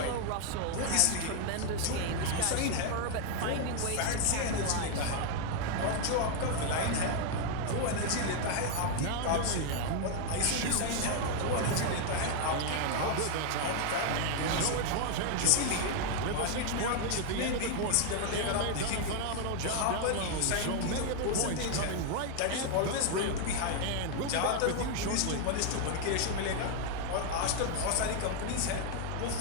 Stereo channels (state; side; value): different; both; correlation 0.01